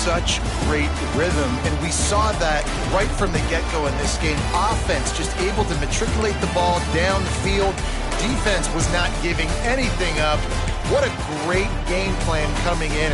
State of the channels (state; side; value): identical; both; correlation 1.00